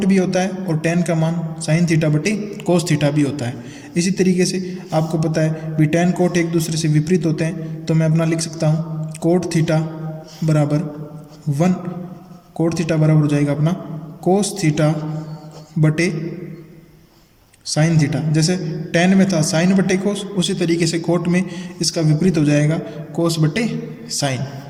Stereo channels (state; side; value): identical; both; correlation 1.00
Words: भी होता है और टेन का मान साइन थीटा बटे कोस थीटा भी होता है। इसी तरीके से आपको पता है भी टेन कोट एक दूसरे से विपरीत होते हैं, तो मैं अपना लिख सकता हूँ कोट थीटा बराबर 1 कोट थीटा बराबर हो जाएगा अपना कोस थीटा बटे साइन थीटा। जैसे टेन में था साइन बटे कोस, उसी तरीके से कोट में इसका विपरीत हो जाएगा कोस बटे साइन।